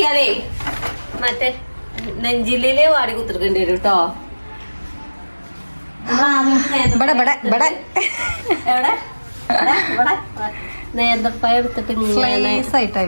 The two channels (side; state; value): both; inverted; correlation -1.00